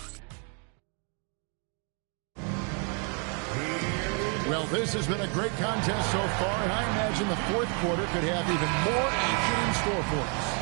Well, Well, this has been a great contest so far, and I imagine the fourth quarter could have even more action in store for us.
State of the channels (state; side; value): quieter; left; 38.6 dB